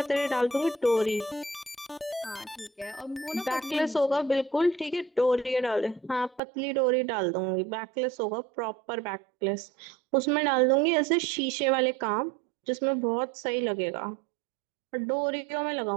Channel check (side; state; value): left; drops out; at 6.4 s